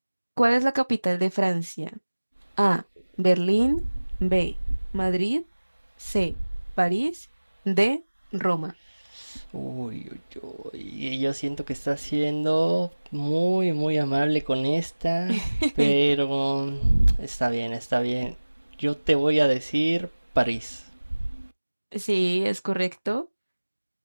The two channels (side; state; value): both; inverted; correlation -1.00